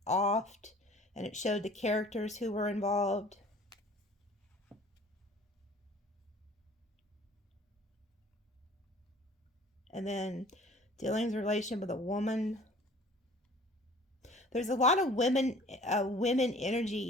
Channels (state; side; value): normal; both; correlation 0.49